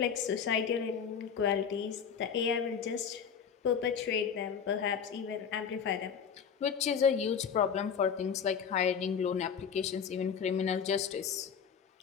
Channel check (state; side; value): quieter; right; 7.1 dB